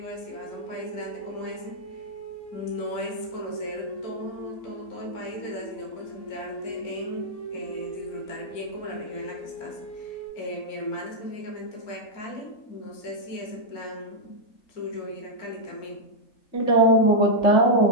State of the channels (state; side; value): late; right; 4.3 ms